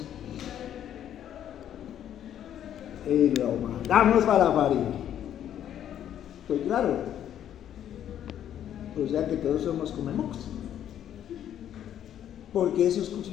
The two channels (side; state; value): right; quieter; 10.4 dB